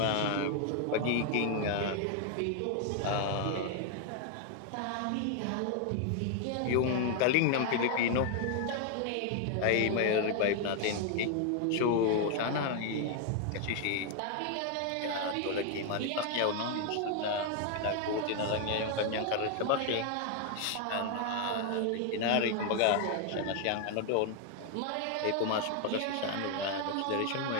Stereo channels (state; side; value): different; both; correlation 0.00